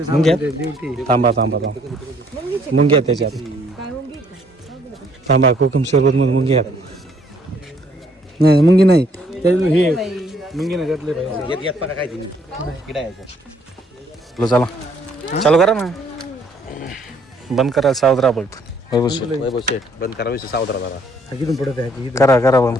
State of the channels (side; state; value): both; normal; correlation 0.65